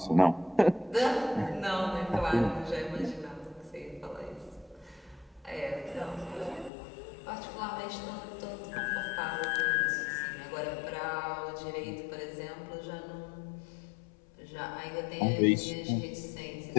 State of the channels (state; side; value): drops out; right; at 6.7 s